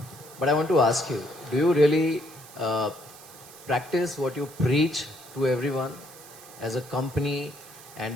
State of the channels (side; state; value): right; noise; hiss, 19 dB below the sound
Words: but I want to ask you, do you really uh, practice what you preach to everyone as a company